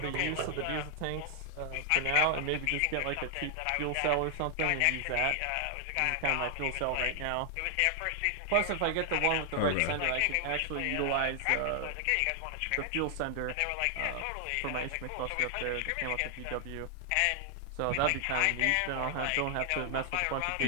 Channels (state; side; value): different; both; correlation 0.00